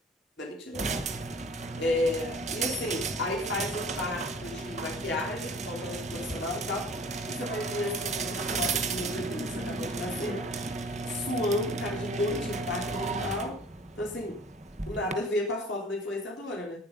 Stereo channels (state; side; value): normal; both; correlation 0.47